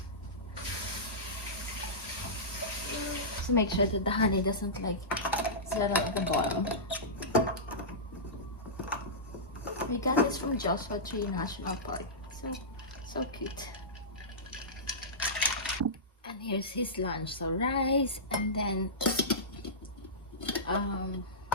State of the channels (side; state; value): both; normal; correlation -0.17